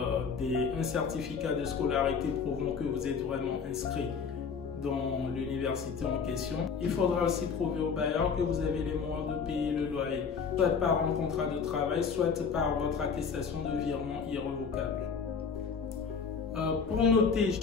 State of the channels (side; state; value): right; quieter; 5.9 dB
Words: certificat de scolarité prouvant que vous êtes vraiment inscrit dans l'université en question. Il faudra aussi prouver au bailleur que vous avez les moyens de payer le loyer, soit par un contrat de travail, soit par votre attestation de virement irrévocable. Pour noter